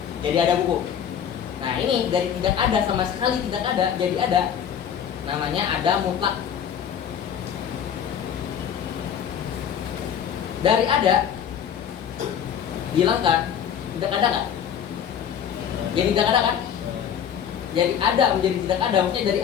Jadi ada buku. Nah, ini dari tidak ada sama sekali tidak ada jadi ada. Namanya ada mutlak. Dari ada dihilangkan, tidak ada nggak? Jadi tidak ada kan? Jadi ada menjadi tidak ada, maksudnya dari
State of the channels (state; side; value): quieter; right; 8.6 dB